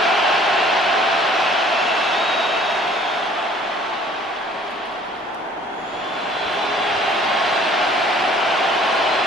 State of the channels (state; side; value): normal; both; correlation 0.54